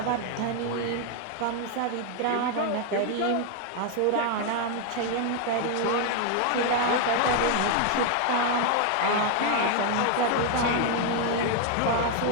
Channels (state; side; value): different; both; correlation 0.00